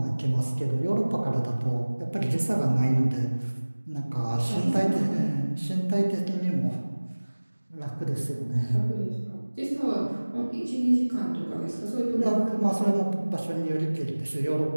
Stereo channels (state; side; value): inverted; both; correlation -1.00